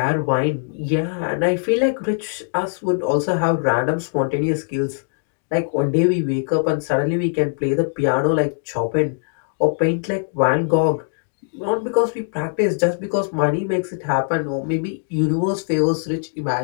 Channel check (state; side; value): silent; right; digital silence